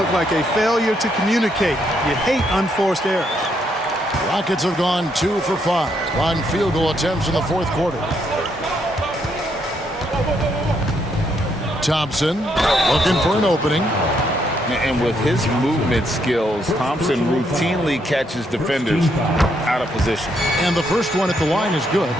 like a failure to communicate. You hate unforced errors. Rockets have gone 2 for 5 on field goal attempts in the fourth quarter. Thompson looking for an opening. And with his movement skills, Thompson routinely catches defenders out of position. And the first one at the line is good.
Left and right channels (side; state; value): both; normal; correlation 0.75